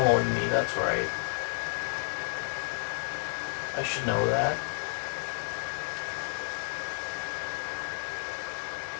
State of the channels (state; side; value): silent; right; digital silence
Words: me. That's right. I should know that.